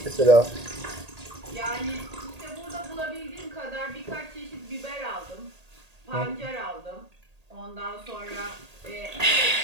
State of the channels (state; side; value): late; left; 1.8 ms